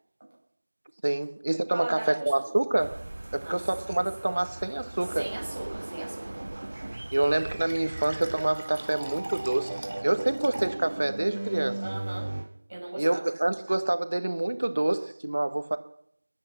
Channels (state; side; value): inverted; both; correlation -1.00